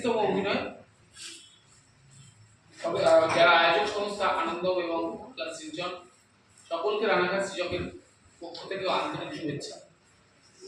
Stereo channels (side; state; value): both; identical; correlation 1.00